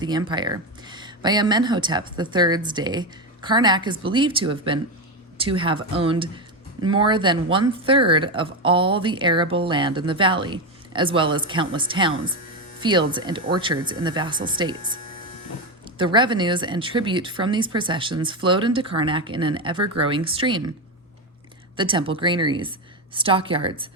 empire. By Amenhotep III's day, Karnak is believed to have owned more than 1/3 of all the arable land in the valley, as well as countless towns, fields, and orchards in the vassal states. The revenues and tribute from these possessions flowed into Karnak in an ever-growing stream. The temple granaries, stockyards,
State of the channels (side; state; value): both; normal; correlation 0.12